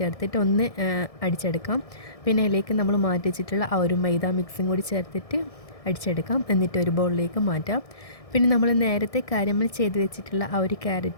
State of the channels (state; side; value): late; right; 1.6 ms